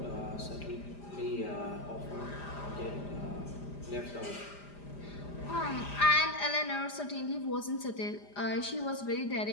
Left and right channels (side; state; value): right; late; 5.0 ms